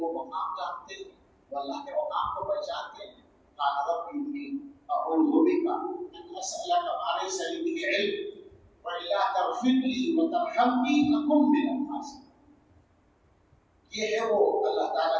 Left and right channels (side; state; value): both; identical; correlation 1.00